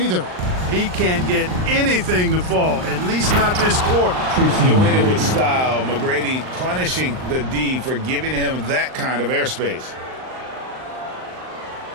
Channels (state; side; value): late; left; 39 ms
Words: He can't get anything to fall, at least not this quarter. Doing it with style. McGrady punishing the D for giving him that kind of airspace.